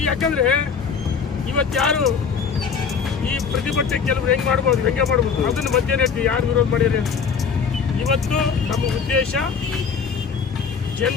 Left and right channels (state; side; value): quieter; right; 6.0 dB